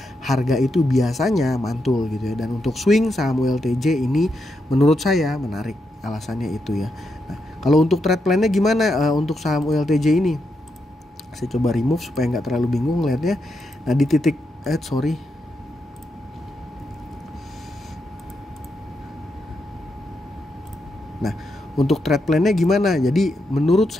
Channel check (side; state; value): both; normal; correlation 0.83